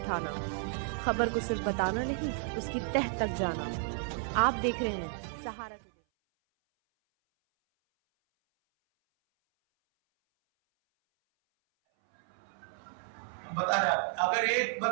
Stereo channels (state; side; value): silent; left; 56 dB below the other